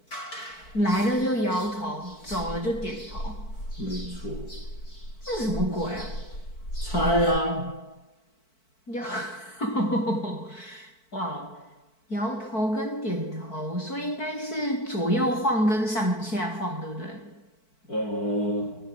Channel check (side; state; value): right; late; 4.5 ms